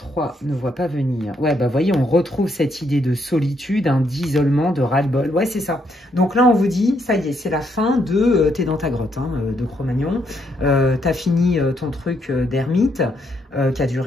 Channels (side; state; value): both; normal; correlation 0.75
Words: ne voit pas venir? Ouais, bah voyez, on retrouve cette idée de solitude, hein, d'isolement, de ras-le-bol. Ouais, c'est ça. Donc là, on vous dit, ça y est, c'est la fin de T'es dans ta grotte, hein, de Cro-Magnon. T'as fini ton truc d'ermite, qui a